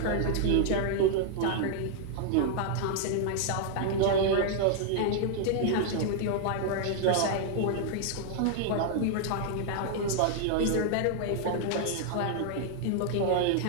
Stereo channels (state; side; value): different; both; correlation -0.01